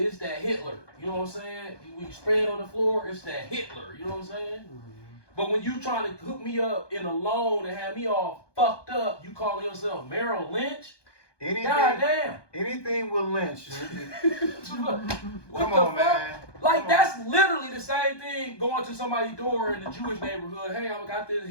this that Hitler. You know what I'm saying? When you spray it on the floor, it's that Hitler. You know what I'm saying? But when you trying to hook me up in a loan and have me all fucked up, you calling yourself Merrill Lynch? God damn. Anything with Lynch. What Come the on, fuck? man. Like, that's literally the same thing going to somebody's door in the Jewish neighborhood. Hey, I got this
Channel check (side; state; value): right; late; 1.2 ms